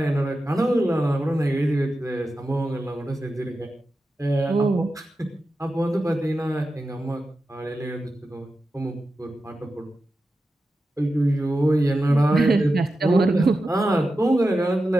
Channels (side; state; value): both; normal; correlation 0.91